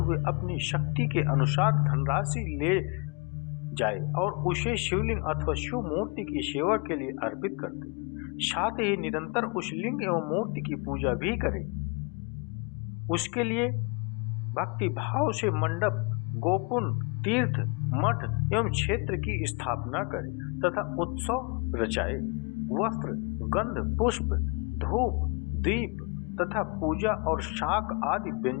अपनी शक्ति के अनुसार धनराशि ले जाए और उसे शिवलिंग अथवा शिव मूर्ति की सेवा के लिए अर्पित कर दे। साथ ही निरंतर उस लिंग एवं मूर्ति की पूजा भी करे। उसके लिए भक्ति भाव से मंडप, गोपुन, तीर्थ, मठ एवं क्षेत्र की स्थापना करे तथा उत्सव रचाए। वस्त्र, गंध, पुष्प, धूप, दीप तथा पूजा और शाक आदि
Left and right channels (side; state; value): right; quieter; 32.7 dB